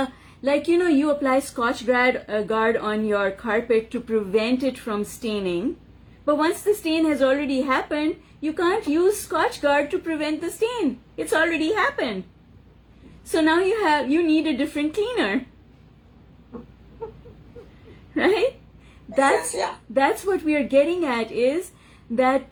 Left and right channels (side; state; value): both; identical; correlation 1.00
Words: apply Scotch Guard on your carpet to prevent it from staining. But once the stain has already happened, you can't use Scotch Guard to prevent the stain. It's already happened. So now you need a different cleaner. Right? That's what we are getting at, is that